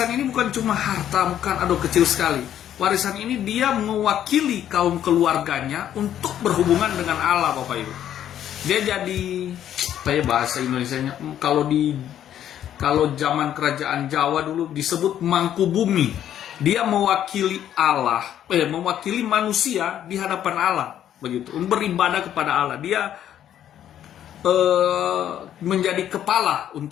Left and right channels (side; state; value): right; quieter; 10.7 dB